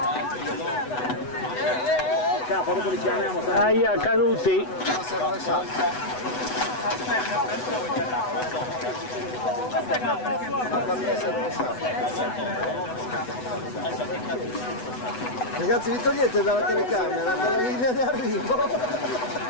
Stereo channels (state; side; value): late; right; 8.0 ms